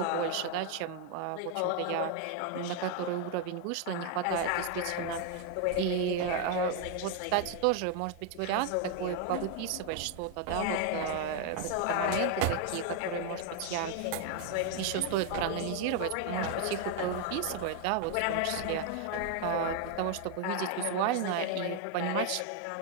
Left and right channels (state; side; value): different; both; correlation 0.00